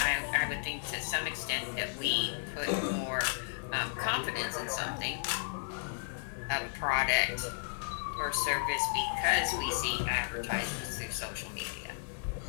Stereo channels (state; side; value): silent; right; digital silence